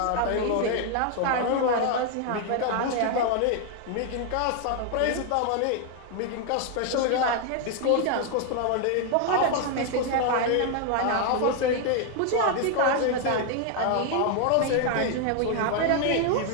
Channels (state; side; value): different; both; correlation 0.00